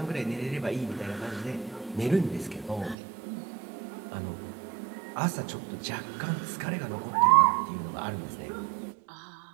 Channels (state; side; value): drops out; left; at 3.0 s